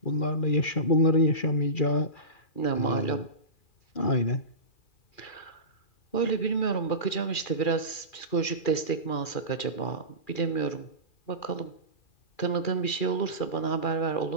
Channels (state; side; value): late; right; 2.4 ms